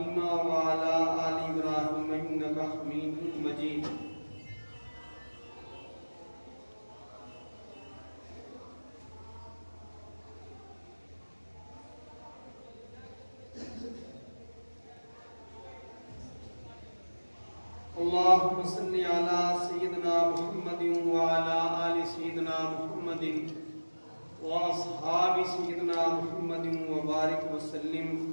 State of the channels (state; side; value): inverted; both; correlation -1.00